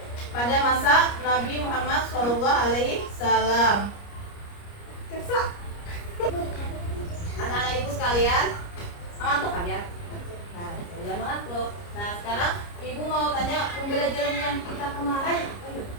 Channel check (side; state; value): right; late; 29 ms